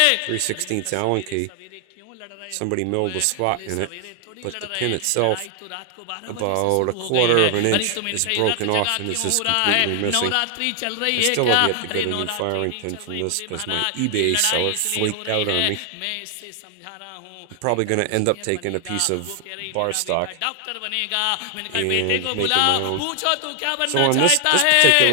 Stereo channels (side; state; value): both; different; correlation 0.00